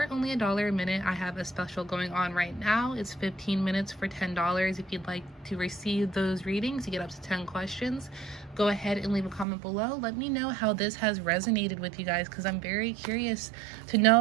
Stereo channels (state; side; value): drops out; left; at 9.5 s